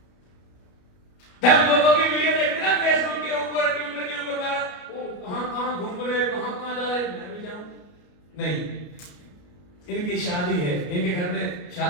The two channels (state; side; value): late; right; 33 ms